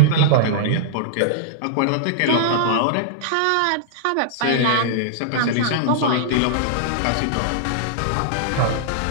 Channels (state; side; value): different; both; correlation -0.02